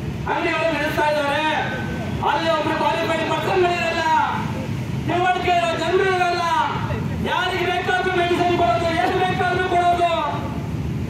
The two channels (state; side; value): identical; both; correlation 1.00